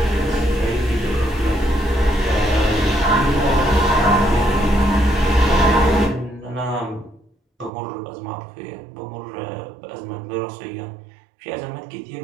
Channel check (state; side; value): drops out; left; at 7.7 s